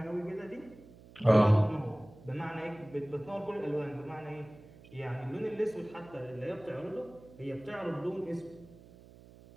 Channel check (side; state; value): right; noise; hum, 21 dB below the sound